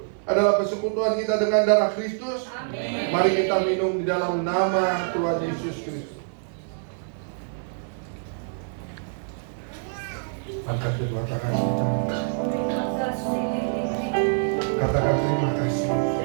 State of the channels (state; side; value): silent; left; 58 dB below the other